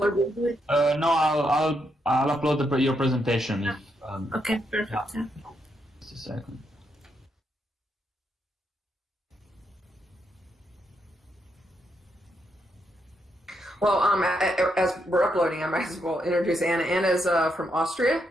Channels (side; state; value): both; normal; correlation 0.80